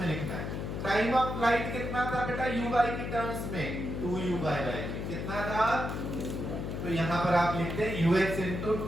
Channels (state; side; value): noise; left; hum, 4 dB below the sound